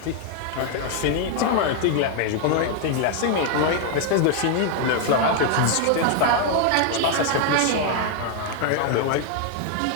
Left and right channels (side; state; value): both; different; correlation 0.00